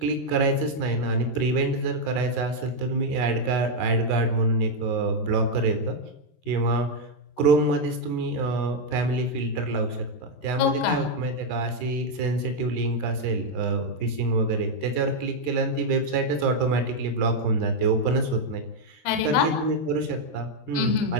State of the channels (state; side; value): late; right; 13 ms